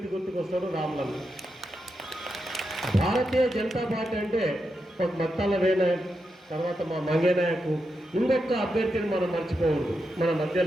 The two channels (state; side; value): normal; both; correlation 0.86